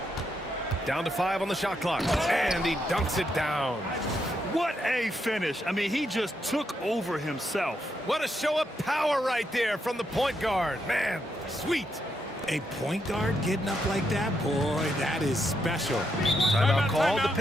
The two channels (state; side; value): normal; both; correlation 0.80